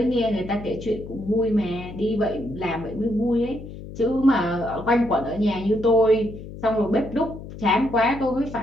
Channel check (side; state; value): left; noise; hum, 13 dB below the sound